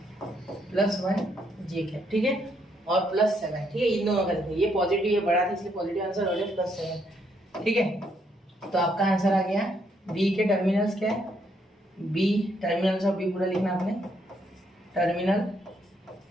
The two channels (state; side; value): normal; both; correlation 0.73